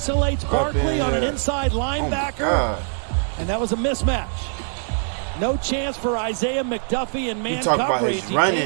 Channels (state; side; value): silent; left; digital silence